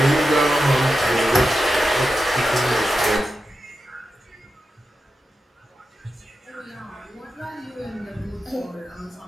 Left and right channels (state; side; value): normal; both; correlation 0.90